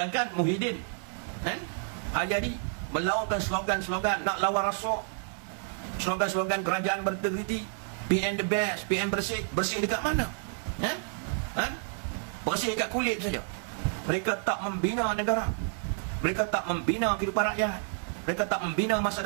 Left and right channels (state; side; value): silent; left; 58 dB below the other